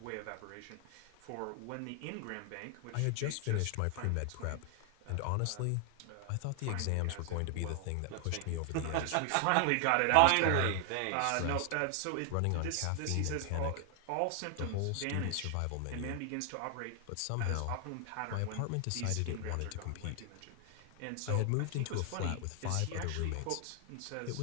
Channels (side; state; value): both; different; correlation 0.00